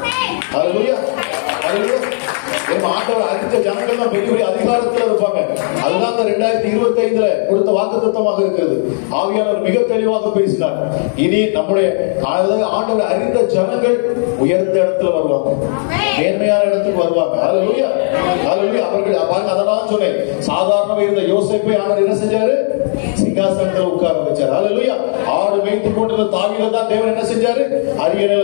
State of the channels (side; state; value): right; silent; digital silence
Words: ஹல்லேலூயா. ஹல்லேலூயா. ஆண்டவர் அடுத்த ஜனங்கள் தான் பெரிய பெரிய அதிகாரத்துல இருப்பாங்க. அதுதான் 2025 கொடுத்த வாக்குத்தத்தமாக இருக்கிறது. ஆவியானவர் மிக தெளிவாக பேசினார். இனி நம்முடைய ஆண்டவர் அறிந்த ஜனங்கள் உயர்ந்த இடத்துல வருவாங்க, மேன்மையான இடத்துக்கு வருவாங்க. ஹல்லேலூயா. ஹல்லேலூயா. அவர்கள் பாருங்க, அதெல்லாம் சொன்னேன். சாதாரண இருந்த யோசேப்பை ஆண்டவர் என்ன செஞ்சாரு, சிங்காசனத்தில் உட்கார வச்சார். ஹல்லேலூயா. ஆடு மேய்த்து கொண்டிருந்த தாவீதை தான் தேவன் என்ன செஞ்சாரு,